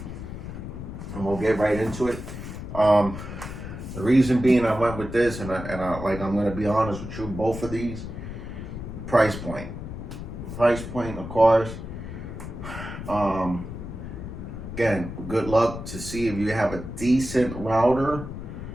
And we'll get right into it. The reason being I went with this, and I'm going to be honest with you, both of these, price point. Price point, of course. Again, good luck to see if you have a decent router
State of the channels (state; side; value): noise; left; rumble, 9 dB below the sound